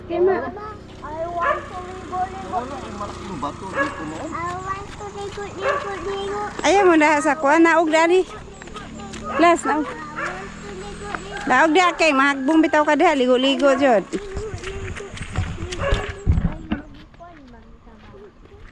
Kima. I want to ligo. Ayaw mo na sa kuha. Naog dali. Las, naog. Naog di kay mahagbong bitaw ka diha. Ligo-ligo dyan.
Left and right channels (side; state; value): both; identical; correlation 1.00